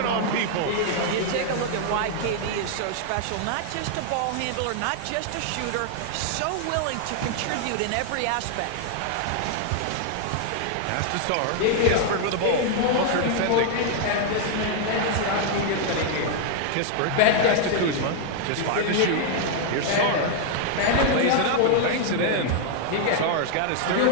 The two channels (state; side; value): different; both; correlation 0.00